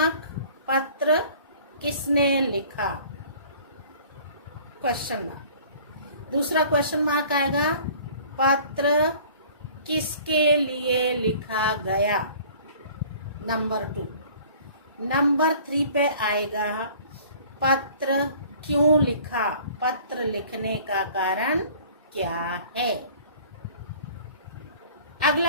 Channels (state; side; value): inverted; both; correlation -0.49